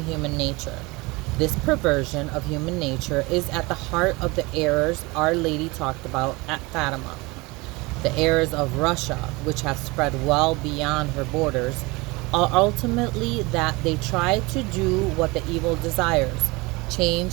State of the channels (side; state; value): left; quieter; 24.4 dB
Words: human nature. This perversion of human nature is at the heart of the errors Our Lady talked about at Fatima. The errors of Russia, which have spread well beyond her borders, are ultimately that they try to do what the evil desires,